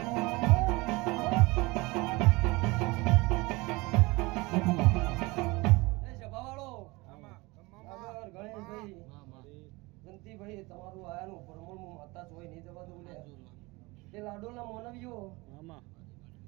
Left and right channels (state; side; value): quieter; left; 23.7 dB